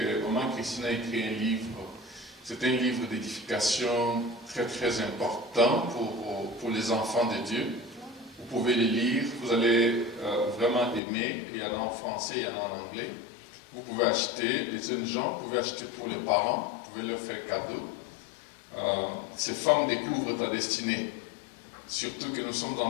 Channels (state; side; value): drops out; right; at 11.0 s